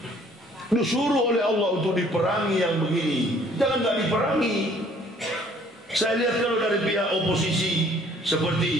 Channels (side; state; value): both; normal; correlation 0.58